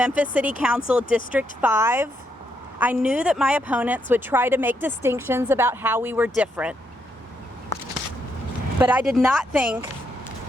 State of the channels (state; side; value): normal; both; correlation 0.78